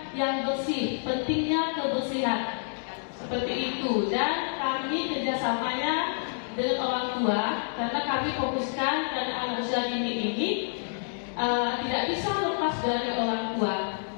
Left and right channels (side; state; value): right; silent; digital silence